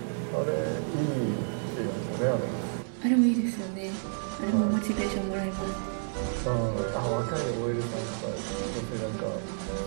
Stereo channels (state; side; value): silent; left; 58 dB below the other